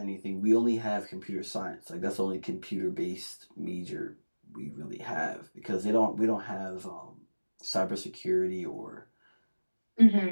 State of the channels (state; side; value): inverted; both; correlation -1.00